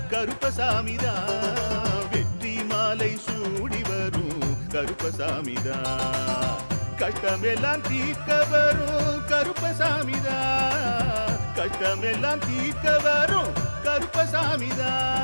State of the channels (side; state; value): both; inverted; correlation -1.00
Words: கருப்பசாமிதான். வெற்றி மாலை சூடி வரும் கருப்பசாமிதான். கஷ்டமெல்லாம் தீர்க்க வரும் கருப்பசாமிதான். கஷ்டமெல்லாம் தீர்க்க வரும்